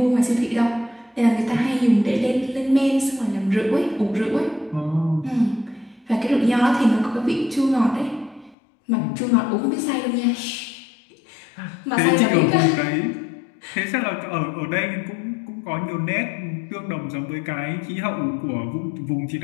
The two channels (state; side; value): drops out; right; at 8.6 s